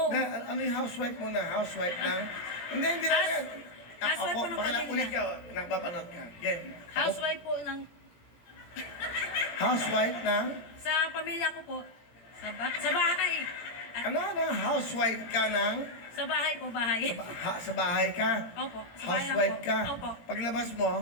Ano yung housewife mo na? Housewife ng... Hindi na yan. Housewife po ng pamilya. Ulit ka, nakapapanood ka. Game. Housewife po ng... Housewife ng... Sa pamilya ko po. Sa bahay. Ano? Housewife ka ng... Sa bahay po, bahay. Sa bahay ka? Opo. Sa bahay lang Housewife po. ka? Opo. Paglabas mo,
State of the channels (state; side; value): late; right; 17 ms